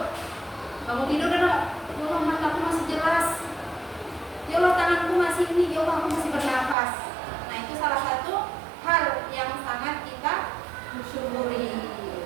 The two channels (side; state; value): left; drops out; at 6.8 s